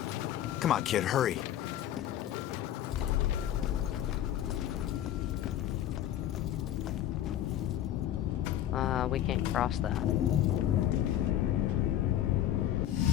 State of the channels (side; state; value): right; quieter; 11.7 dB